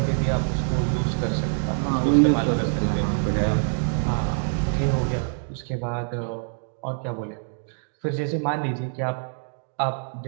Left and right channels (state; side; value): silent; left; digital silence